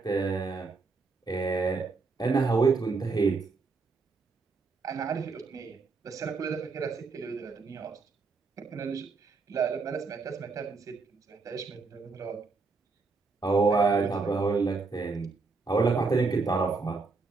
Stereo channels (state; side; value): quieter; left; 4.2 dB